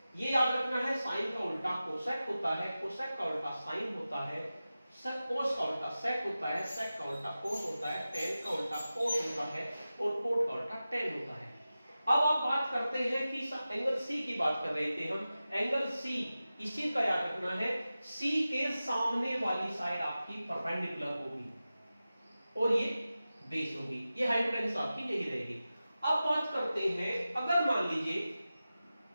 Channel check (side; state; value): both; inverted; correlation -0.95